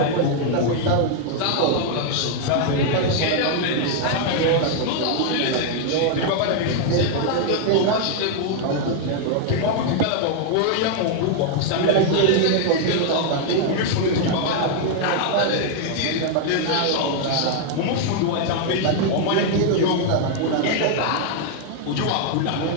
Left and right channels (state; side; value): different; both; correlation 0.00